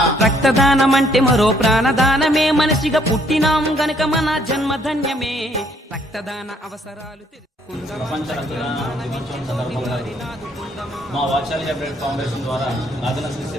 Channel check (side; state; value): both; normal; correlation 0.66